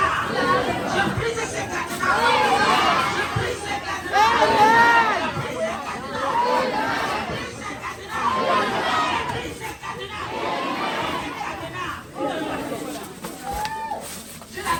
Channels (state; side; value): identical; both; correlation 1.00